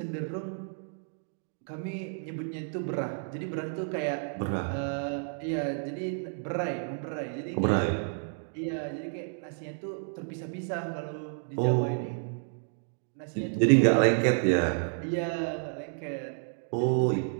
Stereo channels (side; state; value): left; silent; 57 dB below the other